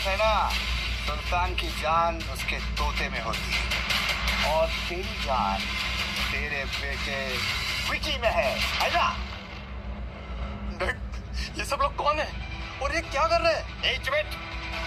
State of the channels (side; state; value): both; identical; correlation 1.00